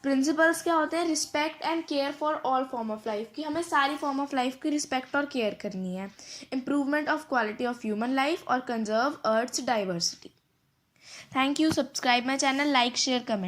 प्रिंसिपल्स क्या होते हैं? Respect and care for all form of life, कि हमें सारी फॉर्म ऑफ लाइफ की रिस्पेक्ट और केयर करनी है। Improvement of quality of human life और conserve earth's diversity. Thank you. Subscribe my channel, like, share,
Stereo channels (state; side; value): identical; both; correlation 1.00